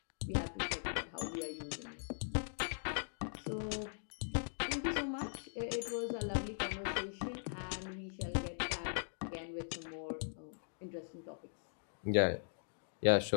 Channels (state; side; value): silent; right; digital silence